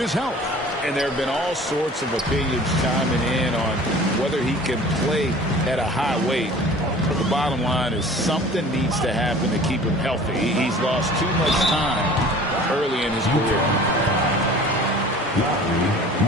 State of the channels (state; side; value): normal; both; correlation 0.45